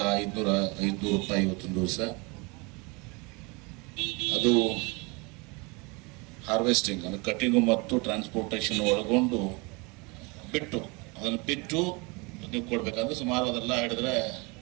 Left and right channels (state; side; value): quieter; left; 28.5 dB